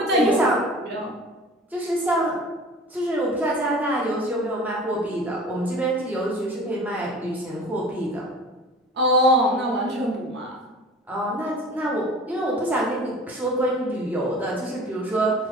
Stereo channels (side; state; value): both; normal; correlation 0.42